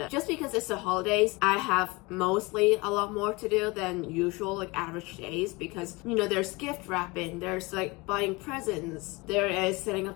just because it's the holidays, I have mostly a lot more to do than usual, like average days, because there's gift wrapping, there's like buying presents, there is setting up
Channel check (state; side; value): quieter; right; 24.8 dB